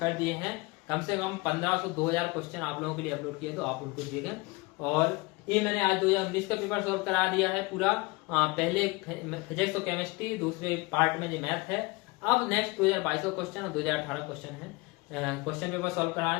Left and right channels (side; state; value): right; quieter; 24.8 dB